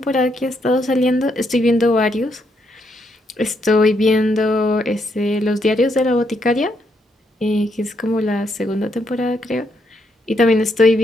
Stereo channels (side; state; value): both; normal; correlation 0.76